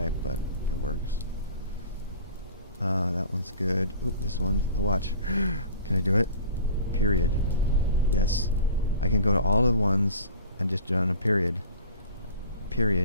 but it works. That one's good. Oop, this one. Oh, watch. Can I do it? Period. Yes. I can go to all the ones and just run a period.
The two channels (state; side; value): inverted; both; correlation -0.41